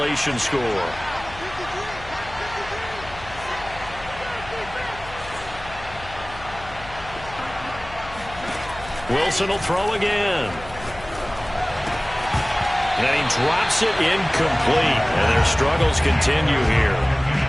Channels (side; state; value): left; noise; hum, 16 dB below the sound